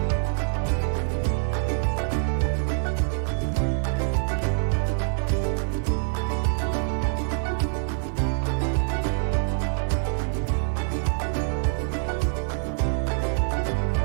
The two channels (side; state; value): left; silent; 61 dB below the other